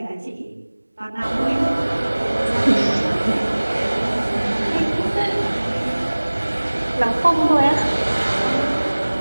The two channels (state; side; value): inverted; both; correlation -1.00